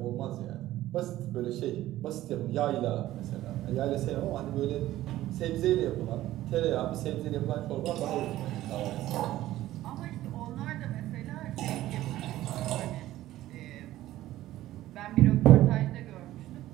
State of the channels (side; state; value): left; quieter; 14.9 dB